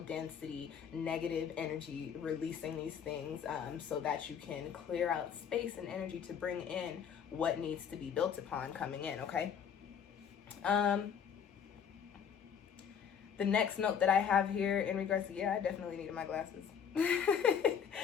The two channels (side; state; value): right; quieter; 7.6 dB